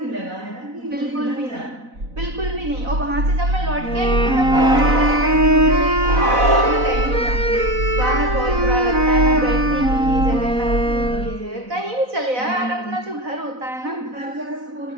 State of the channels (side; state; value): left; late; 4.0 ms